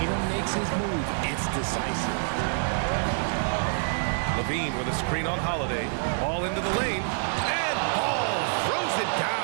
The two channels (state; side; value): silent; left; digital silence